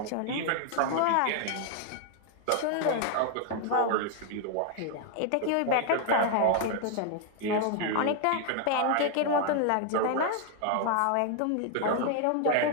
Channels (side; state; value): both; different; correlation 0.00